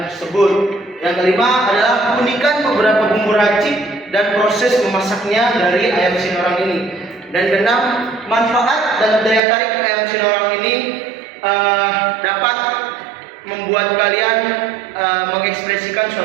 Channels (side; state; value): left; drops out; at 9.4 s